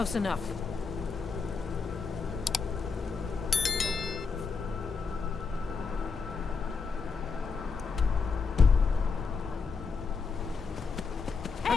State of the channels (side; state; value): right; quieter; 5.0 dB